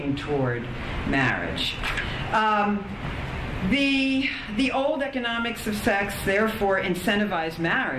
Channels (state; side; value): identical; both; correlation 1.00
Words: toward marriage. The old economics of sex therefore incentivize